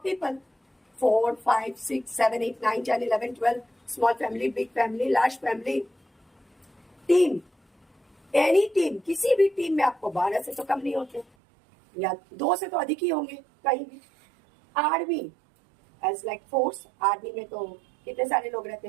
people, 4, 5, 6, 7, 8, 9, 10, 11, 12, small family, big family, large family. Team, any team, किसी भी टीम में आपको 12 से तो कम नहीं होते, या 2 से तो अधिक ही होंगे कहीं भी। Army as like force, army में तो कितने सारे लोग रहते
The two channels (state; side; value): drops out; left; at 11.2 s